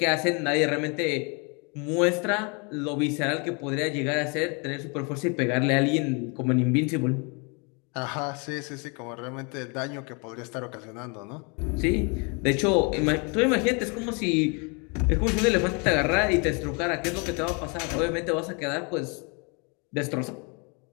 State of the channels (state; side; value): quieter; right; 33.0 dB